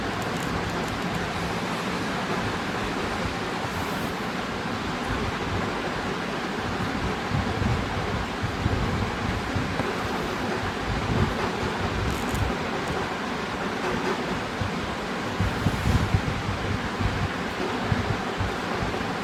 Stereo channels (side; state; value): both; identical; correlation 1.00